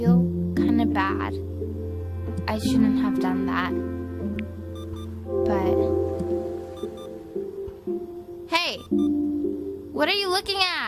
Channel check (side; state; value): both; identical; correlation 1.00